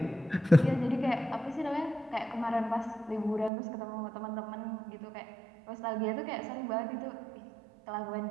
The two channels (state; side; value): drops out; left; at 3.5 s